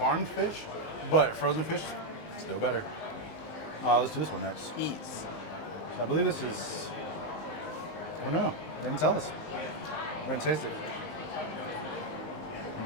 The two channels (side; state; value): right; late; 19 ms